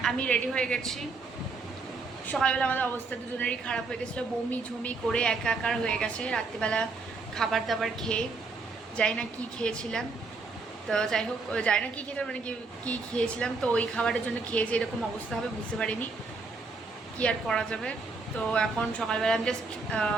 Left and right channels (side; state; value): left; quieter; 4.0 dB